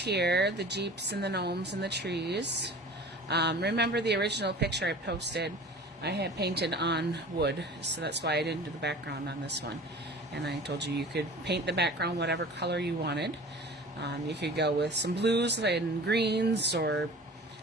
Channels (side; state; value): both; normal; correlation 0.41